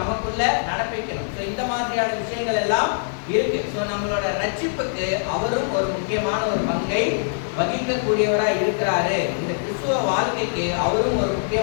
நமக்குள்ள நடப்பிக்கணும். ஸோ இந்த மாதிரியான விஷயங்கள் எல்லாம் இருக்கு. ஸோ நம்மளோட ரட்சிப்புக்கு அவரும் ஒரு முக்கியமான ஒரு பங்கை வகிக்கக்கூடியவராக இருக்கிறாரு. இந்த கிறிஸ்துவ வாழ்க்கைக்கு அவரும் ஒரு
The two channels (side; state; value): right; silent; 63 dB below the other